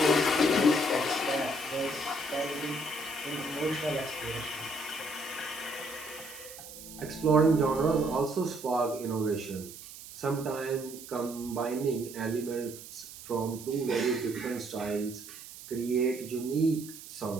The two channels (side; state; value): right; noise; hiss, 14 dB below the sound